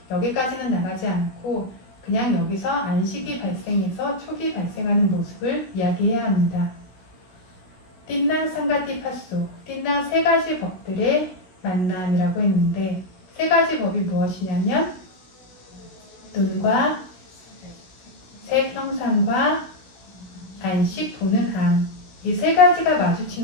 여기까지는 나가지 않고 그냥 여기서 안식이 발생해서 촉이 발생하는 모습을 이야기해야 합니다. 띵랑 상가티파소, 띵랑 세 가지 법들의 만남이라고 했는데 세 가지 법이 무엇이냐면 눈과 색 형상과 안식 보는 암, 이 세 가지가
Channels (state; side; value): late; right; 16 ms